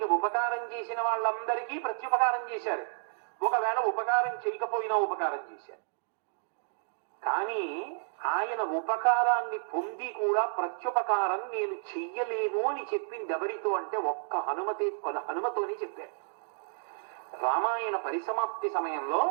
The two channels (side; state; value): left; silent; digital silence